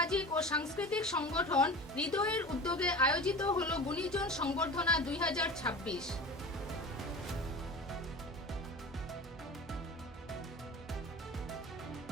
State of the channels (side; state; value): both; normal; correlation 0.34